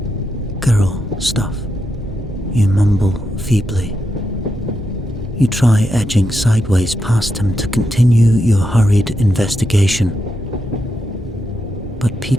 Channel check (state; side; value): normal; both; correlation 0.84